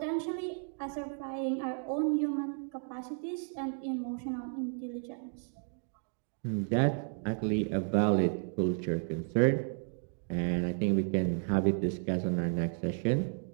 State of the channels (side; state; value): left; silent; 56 dB below the other